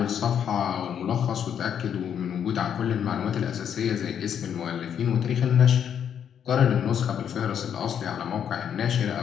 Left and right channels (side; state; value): right; quieter; 8.6 dB